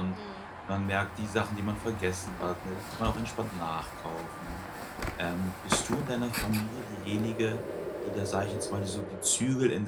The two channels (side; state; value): both; identical; correlation 1.00